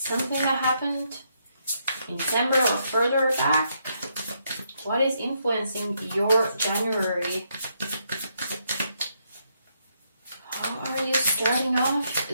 that happened in December or further back? What is influencing your January? How are you starting off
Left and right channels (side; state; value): both; inverted; correlation -0.77